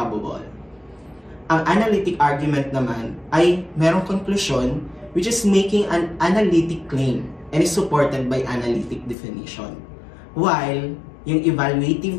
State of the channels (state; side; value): drops out; right; at 9.2 s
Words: Ang analytic argument naman ay merong conclusion which is making an analytic claim and is supported by analytic definition. While yung